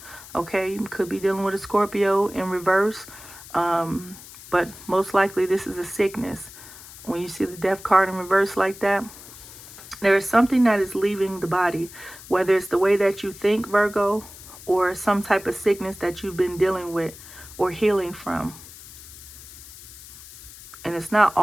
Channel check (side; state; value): left; noise; hiss, 17 dB below the sound